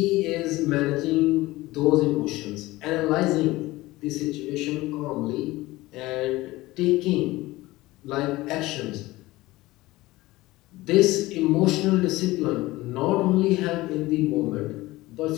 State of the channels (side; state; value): right; quieter; 19.0 dB